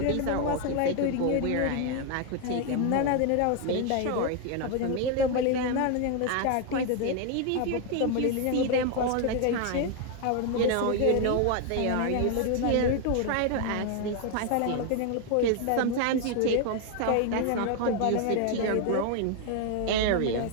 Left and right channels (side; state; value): both; different; correlation 0.01